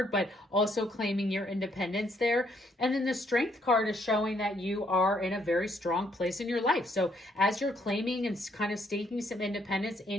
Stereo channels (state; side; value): normal; both; correlation 0.70